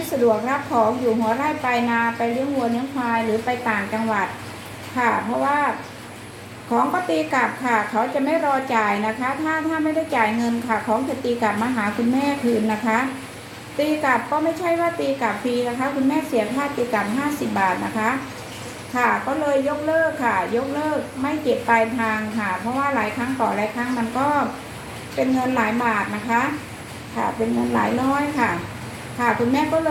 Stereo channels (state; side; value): identical; both; correlation 1.00